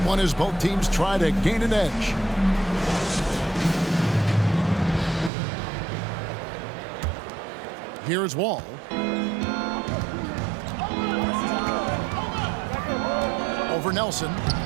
one as both teams try to gain an edge. Here's Wall. Over Nelson.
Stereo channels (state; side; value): drops out; left; at 5.3 s